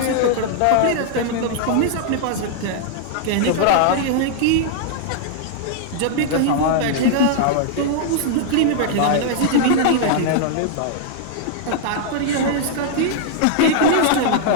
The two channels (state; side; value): different; both; correlation -0.01